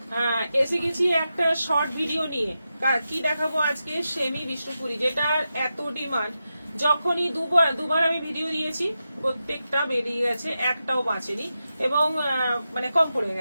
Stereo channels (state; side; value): inverted; both; correlation -0.90